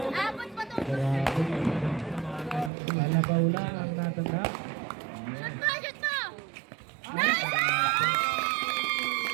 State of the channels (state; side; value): drops out; left; at 2.7 s